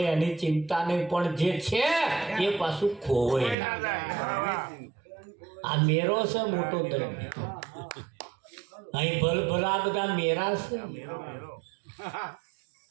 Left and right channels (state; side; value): drops out; left; at 3.6 s